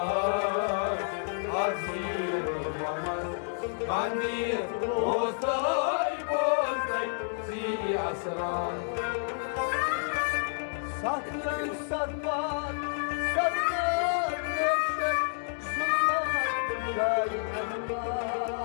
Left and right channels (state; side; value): silent; right; digital silence